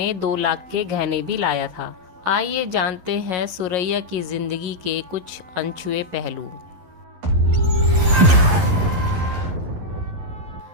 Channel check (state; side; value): late; left; 11 ms